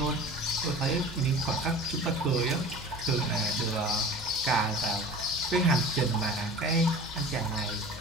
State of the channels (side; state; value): both; normal; correlation 0.40